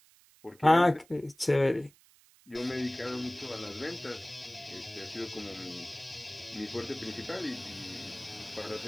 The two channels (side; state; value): right; noise; hiss, 28 dB below the sound